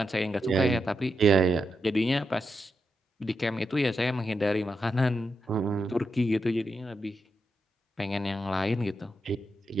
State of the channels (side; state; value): both; normal; correlation 0.85